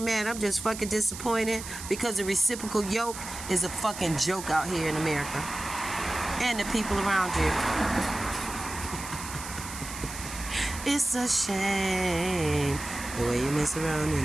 mad. I'm just fucking disappointed because the reciprocal yoke is a fucking joke out here in America. And the people around you. It's a shame the way you mess around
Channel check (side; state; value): right; noise; hiss, 10 dB below the sound